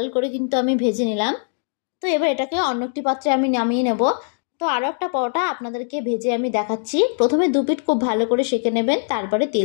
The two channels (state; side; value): silent; right; digital silence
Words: করে কিন্তু আমি ভেজে নিলাম। তো এবার এটাকে অন্য একটি পাত্রে আমি নামিয়ে নেব। তো আরও একটা পরোটা আপনাদেরকে ভেজে আমি দেখাচ্ছি। প্রথমে দু পিঠ খুব ভালো করে সেঁকে নেবেন, তারপরে